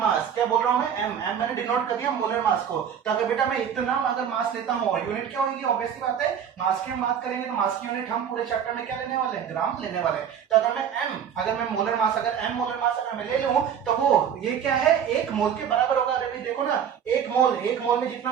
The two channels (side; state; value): left; quieter; 8.4 dB